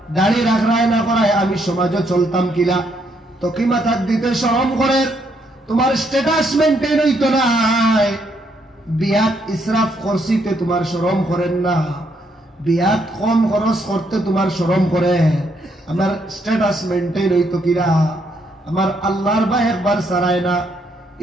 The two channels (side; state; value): both; normal; correlation 0.74